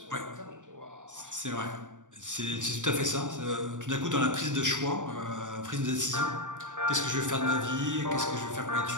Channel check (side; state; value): left; late; 0.87 ms